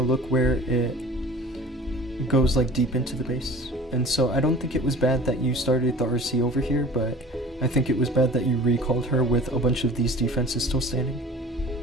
look where it goes like deep into the base. And so I don't think it was bad that you started the RC over here, but I think it was bad that you recalled her with a bunch of these defenses still standing.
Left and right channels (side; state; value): both; normal; correlation 0.43